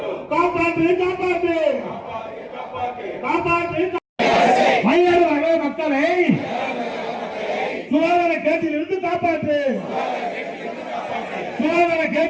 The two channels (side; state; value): both; identical; correlation 1.00